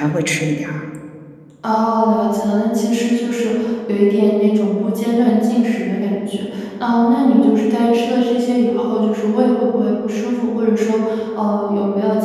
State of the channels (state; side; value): identical; both; correlation 1.00